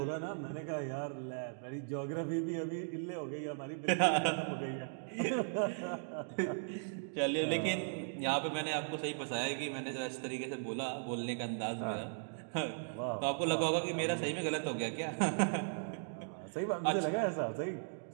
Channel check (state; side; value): silent; left; digital silence